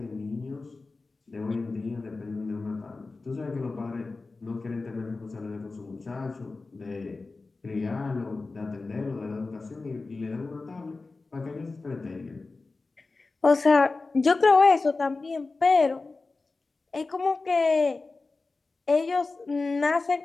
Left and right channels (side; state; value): right; quieter; 3.7 dB